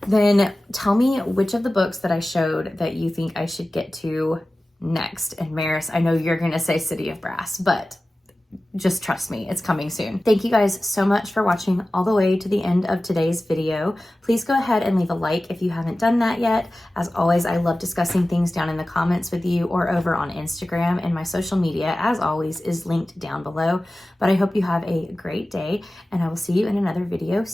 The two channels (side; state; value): both; normal; correlation 0.96